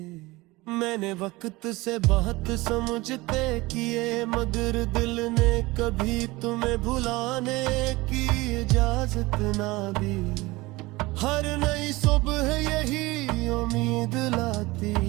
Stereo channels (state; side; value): quieter; left; 21.4 dB